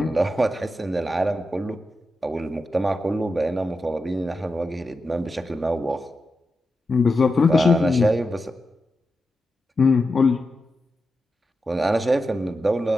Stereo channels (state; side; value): normal; both; correlation 0.89